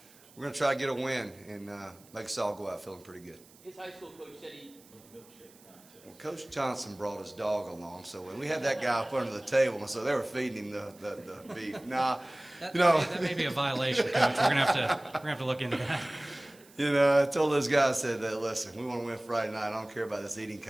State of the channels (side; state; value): right; noise; hiss, 25 dB below the sound